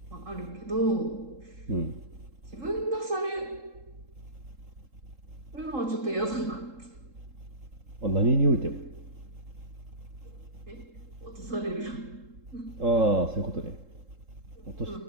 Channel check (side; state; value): left; late; 3.7 ms